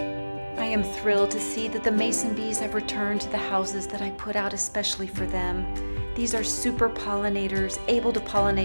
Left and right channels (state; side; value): inverted; both; correlation -1.00